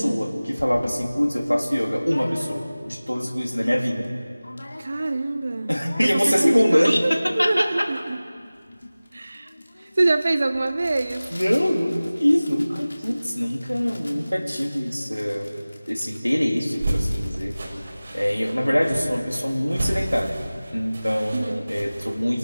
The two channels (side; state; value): both; inverted; correlation -0.98